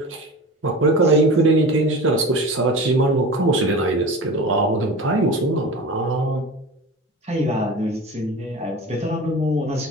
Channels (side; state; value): both; normal; correlation 0.33